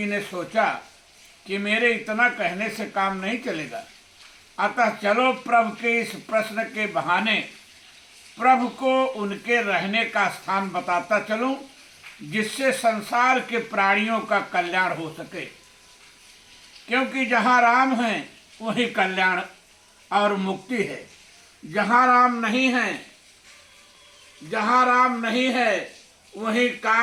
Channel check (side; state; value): both; identical; correlation 1.00